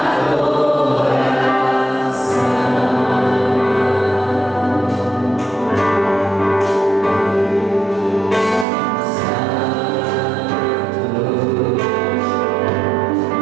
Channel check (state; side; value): drops out; left; at 8.7 s